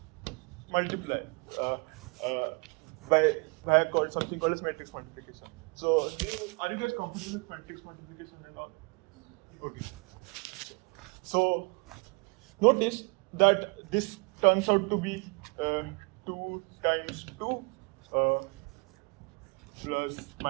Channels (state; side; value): quieter; left; 32.1 dB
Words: multiply by something called as matrix multiplication. So, are you guys comfortable with matrix multiplication and all? Okay. So, notice that this turns out to be 2 times 2 plus